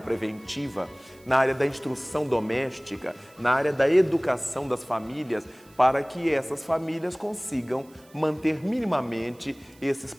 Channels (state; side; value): noise; right; hiss, 28 dB below the sound